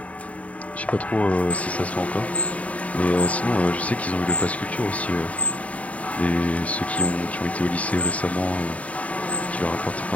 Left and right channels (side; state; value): right; late; 0.068 ms